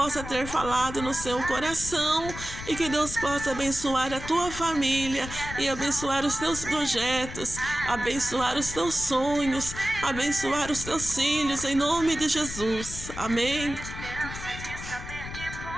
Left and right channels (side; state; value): left; noise; rumble, 10 dB below the sound